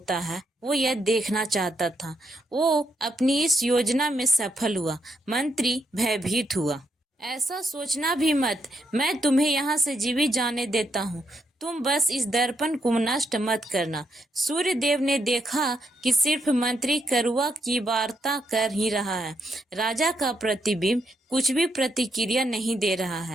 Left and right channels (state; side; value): normal; both; correlation 0.78